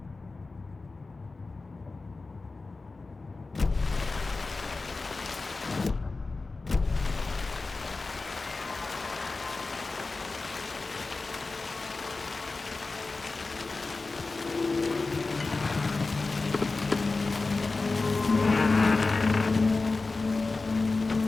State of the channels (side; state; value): right; quieter; 3.7 dB